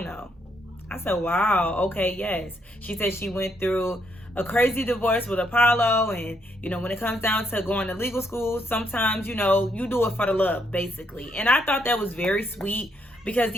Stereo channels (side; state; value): both; normal; correlation 0.74